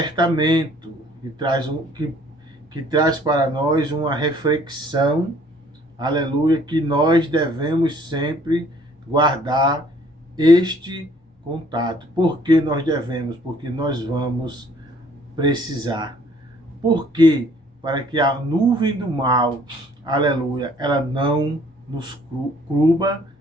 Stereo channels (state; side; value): normal; both; correlation 0.59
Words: que traz para nós uma reflexão, aleluia, que nós devemos sempre guardar este contato. Por que nós devemos? Porque nós vamos precisar. Por quê? Para que a nuvem do mal, aleluia, ela não nos cubra,